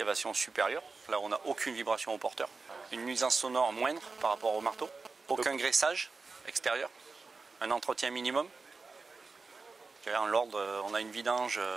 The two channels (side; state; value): left; quieter; 4.2 dB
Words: supérieure. Là, on n'a aucune vibration au porteur. Une nuisance sonore moindre par rapport au marteau. Aucun graissage extérieur. Un entretien minimum. En l'ordre, on a une vidange